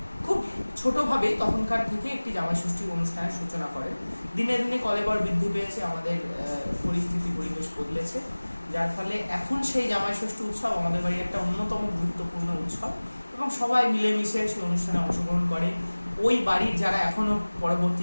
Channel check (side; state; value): both; inverted; correlation -1.00